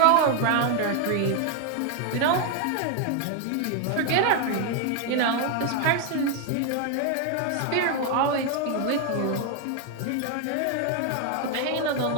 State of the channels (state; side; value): different; both; correlation 0.01